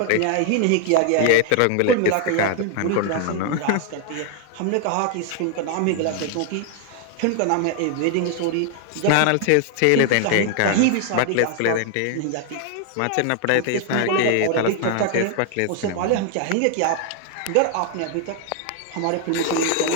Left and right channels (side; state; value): both; different; correlation 0.00